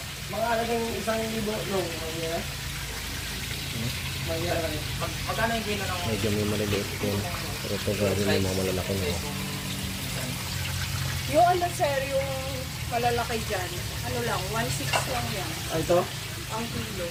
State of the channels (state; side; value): identical; both; correlation 1.00